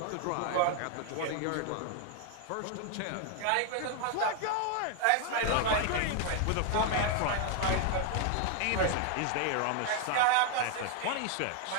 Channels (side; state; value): both; different; correlation 0.00